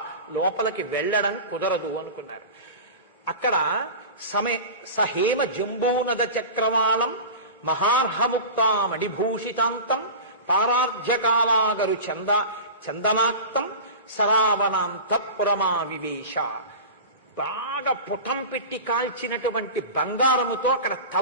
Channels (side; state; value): both; inverted; correlation -0.31